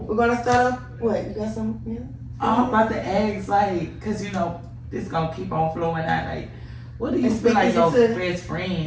gonna start off. What you got some? Yeah. I'm about to ask, like, cause you know this gonna keep on flowing out. Like, what do you And feel like your speaking to- best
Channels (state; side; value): identical; both; correlation 1.00